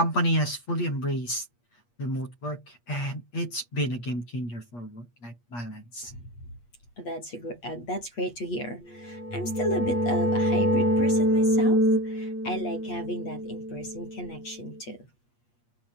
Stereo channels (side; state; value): right; late; 8.4 ms